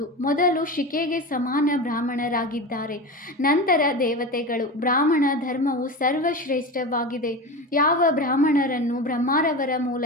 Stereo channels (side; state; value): both; normal; correlation 0.25